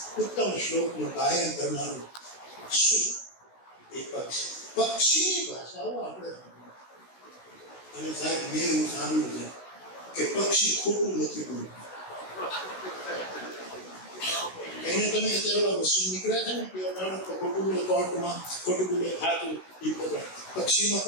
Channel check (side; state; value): right; late; 16 ms